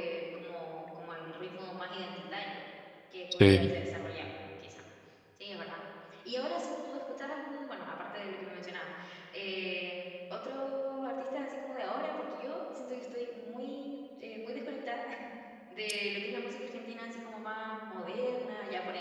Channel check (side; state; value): both; identical; correlation 1.00